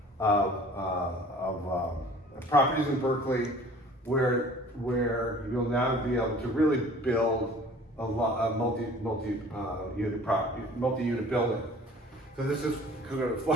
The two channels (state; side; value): normal; both; correlation 0.48